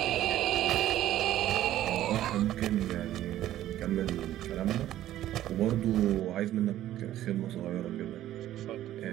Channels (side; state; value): left; quieter; 13.2 dB